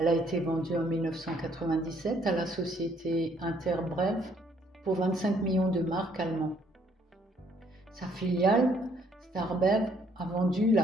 a été vendue en 1997 à la société Interbrewf pour 25 millions de marks allemands. Sa filiale, Starbev, a vendu la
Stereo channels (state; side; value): normal; both; correlation 0.65